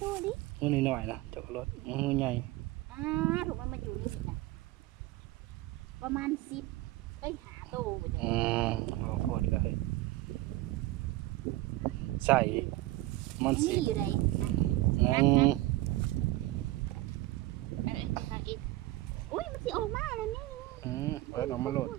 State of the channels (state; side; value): quieter; left; 17.8 dB